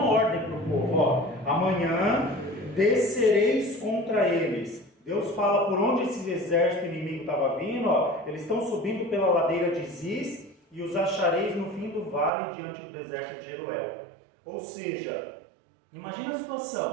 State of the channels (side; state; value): left; drops out; at 12.3 s